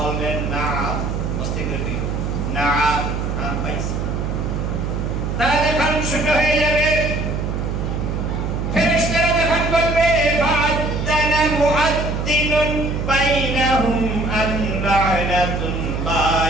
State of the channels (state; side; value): noise; right; hum, 2 dB below the sound